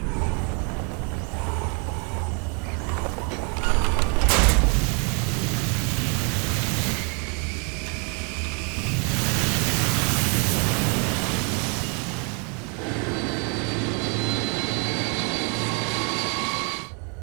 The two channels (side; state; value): left; quieter; 36.4 dB